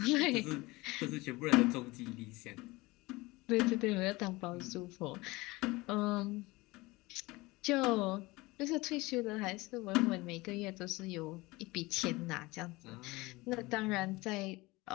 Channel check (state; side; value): quieter; right; 22.0 dB